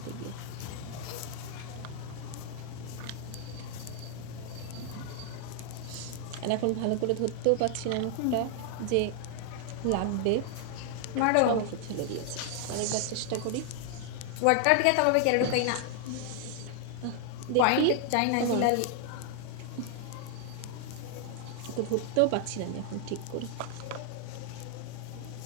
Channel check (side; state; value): both; different; correlation 0.00